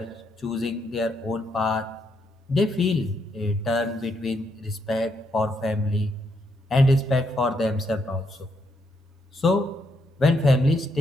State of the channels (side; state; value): both; normal; correlation 0.77